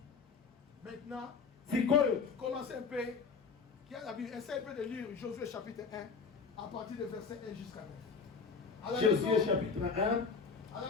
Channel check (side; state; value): right; quieter; 5.1 dB